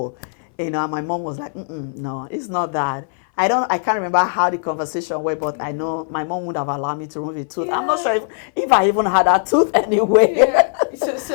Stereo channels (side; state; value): right; silent; 60 dB below the other